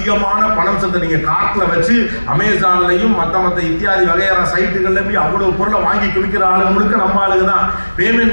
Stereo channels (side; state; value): both; inverted; correlation -1.00